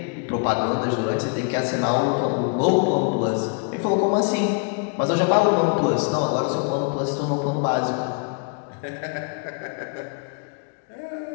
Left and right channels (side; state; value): right; quieter; 36.4 dB